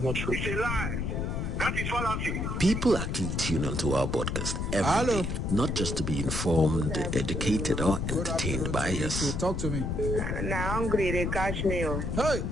not true. It's a lie. That is fallacy. People actually tune onto our podcast every day, not just to be informed, educated, or entertained by us. Talk to me. Now hungry, they catch me. Hey,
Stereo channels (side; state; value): left; noise; rumble, 1 dB below the sound